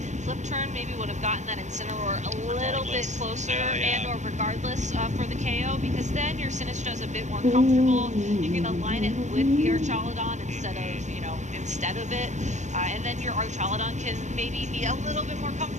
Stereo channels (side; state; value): left; late; 0.34 ms